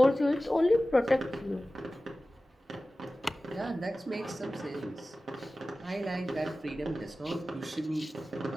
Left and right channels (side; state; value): both; normal; correlation 0.96